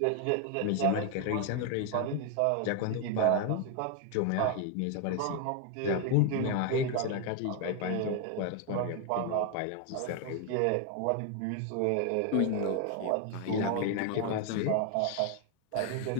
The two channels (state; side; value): different; both; correlation 0.01